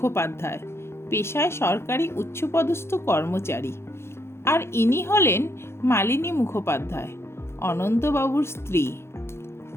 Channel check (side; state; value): right; late; 0.12 ms